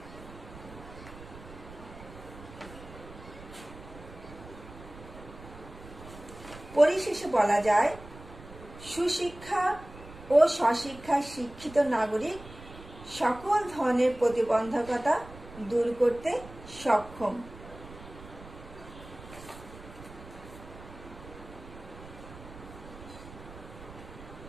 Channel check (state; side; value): noise; right; rumble, 16 dB below the sound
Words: পরিশেষে বলা যায়, সুশিক্ষা ও স্বশিক্ষায় শিক্ষিত নাগরিক সকল ধরনের প্রতিবন্ধকতা দূর করতে সক্ষম।